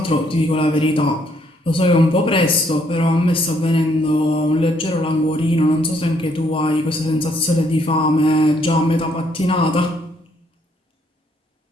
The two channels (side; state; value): both; normal; correlation 0.69